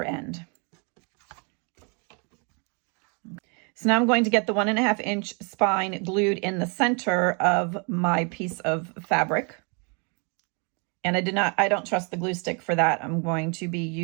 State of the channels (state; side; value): quieter; left; 35.0 dB